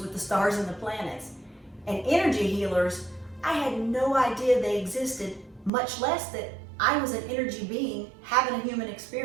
the stars and the planets. And energy healers, I had no idea they existed, much less that I was an energy being having a human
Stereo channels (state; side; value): drops out; left; at 5.7 s